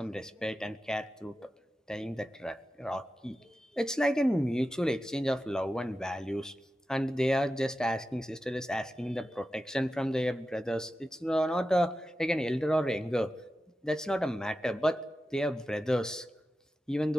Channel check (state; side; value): normal; both; correlation 0.92